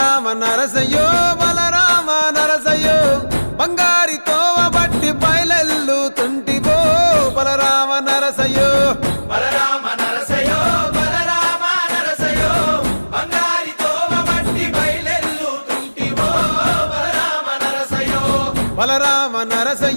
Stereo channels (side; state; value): both; inverted; correlation -1.00